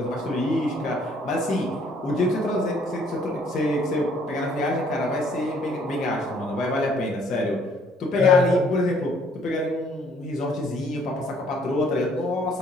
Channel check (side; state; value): both; normal; correlation 0.63